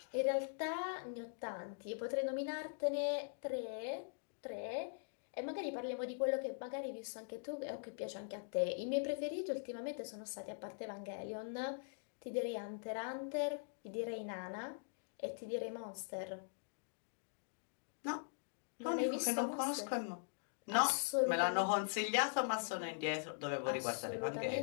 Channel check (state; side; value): silent; right; digital silence